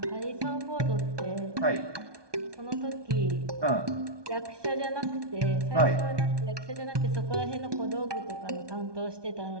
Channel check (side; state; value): left; late; 1.2 ms